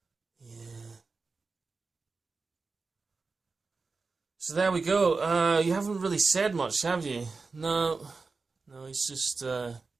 Yeah. So there we go. You haven't really said much, have you? No, it's just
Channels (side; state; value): left; quieter; 4.2 dB